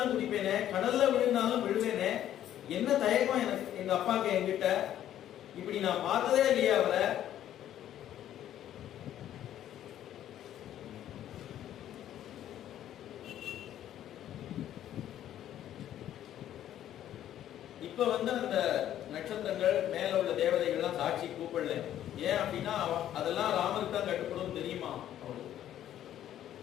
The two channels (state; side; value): quieter; right; 11.5 dB